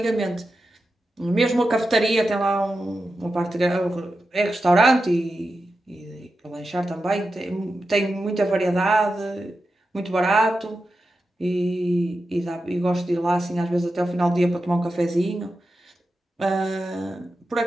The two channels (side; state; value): both; normal; correlation 0.90